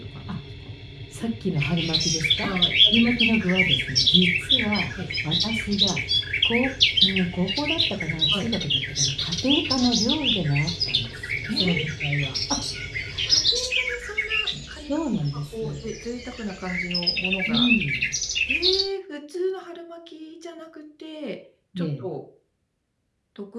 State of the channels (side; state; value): both; identical; correlation 1.00